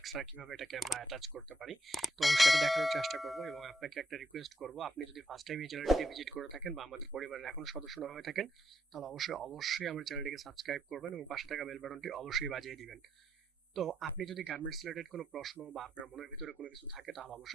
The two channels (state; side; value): normal; both; correlation 0.77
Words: আর কিভাবে এটাকে আমরা অ্যাটাচ করতে পারি। তো সেটা দেখানোর চেষ্টা করব এবং আপনাকে একটা রিকোয়েস্ট করব, আপনি যদি ফার্স্ট টাইম এই চ্যানেলটিকে ভিজিট করে থাকেন বা আমাদের পরিবারের এখন সদস্য না হয়ে থাকেন তাহলে অবশ্যই আমার চ্যানেলটিকে সাবস্ক্রাইব করবেন এবং পাশে থাকা বেল বাটনটি অবশ্যই বাজিয়ে দিবেন। তো আপনি যদি গার্মেন্টস রিলেটেড কোনো প্রশ্ন বা আপনার মনের ভিতরে কোনো কিছু থাকে তাহলে